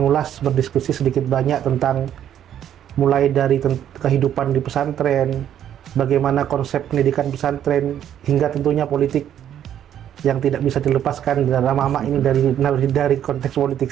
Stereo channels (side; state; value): left; quieter; 10.3 dB